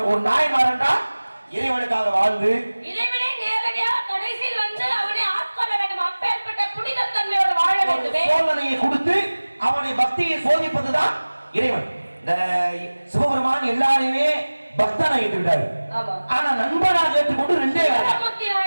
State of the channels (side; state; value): both; inverted; correlation -1.00